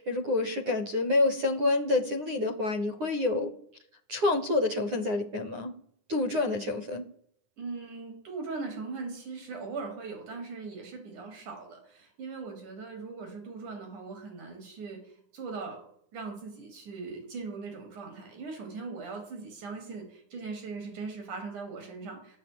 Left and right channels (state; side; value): late; left; 9.7 ms